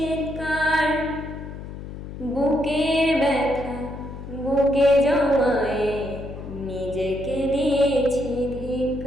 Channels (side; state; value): left; noise; hum, 10 dB below the sound